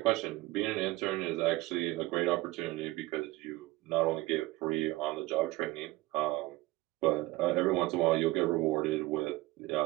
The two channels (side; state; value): left; quieter; 19.5 dB